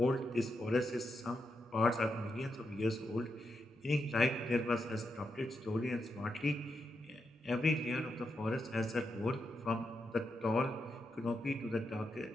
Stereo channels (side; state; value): both; normal; correlation 0.84